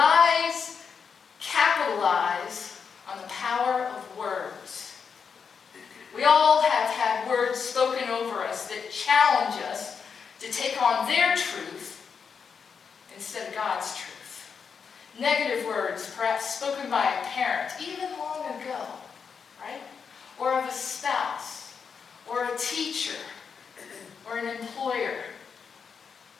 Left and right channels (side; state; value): right; quieter; 6.2 dB